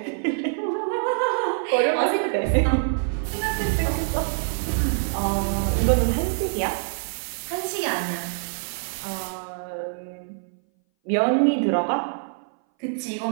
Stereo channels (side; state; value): left; silent; 59 dB below the other